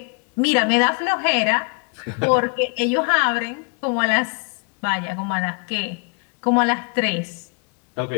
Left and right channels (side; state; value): right; quieter; 35.6 dB